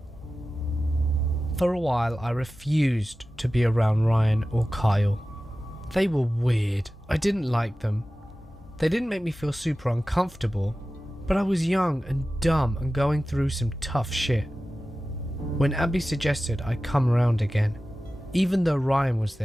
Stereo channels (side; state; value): both; normal; correlation 0.95